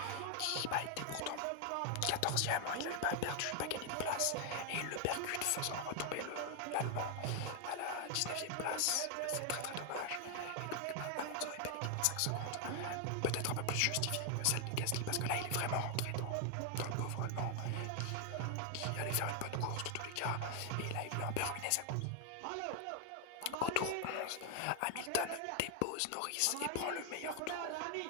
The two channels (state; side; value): different; both; correlation 0.00